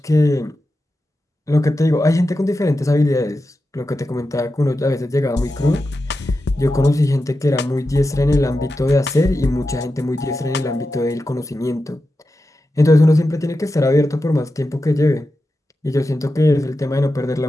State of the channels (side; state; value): both; normal; correlation 0.91